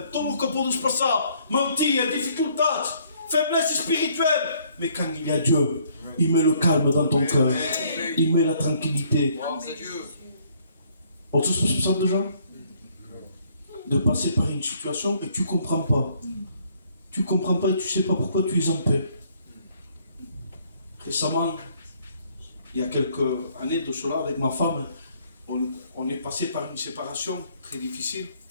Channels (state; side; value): inverted; both; correlation -0.64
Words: Tout que pour nous passer, mentir, difficultés, faiblesse spirituelle. Mais quand il y a Dieu, il met le calme dans ton cœur. Il met la tranquillité. On se passe ça déjà? De passer par une situation et tu ne comprends pas. Tu ne comprends pas et tu ne sais pas pourquoi tu es en paix. Récemment, il y a quelques années de cela, avec ma femme, on est passé par une séparation très difficile